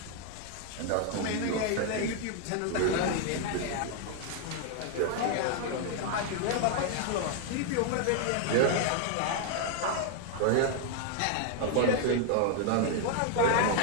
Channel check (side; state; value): both; different; correlation 0.00